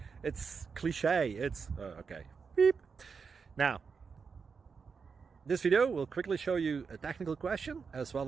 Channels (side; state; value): left; quieter; 5.5 dB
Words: It's cliche. It's okay. Beep. Now, this video will quickly show you a technical question as well